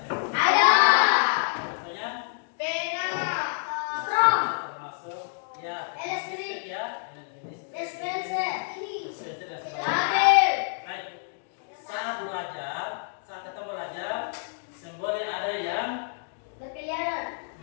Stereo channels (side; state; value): right; silent; digital silence